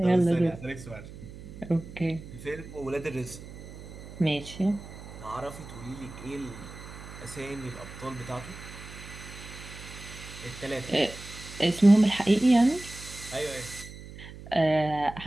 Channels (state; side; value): noise; right; hum, 14 dB below the sound